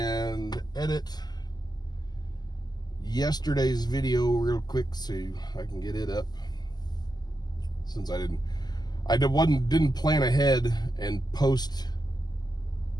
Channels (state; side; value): late; right; 0.20 ms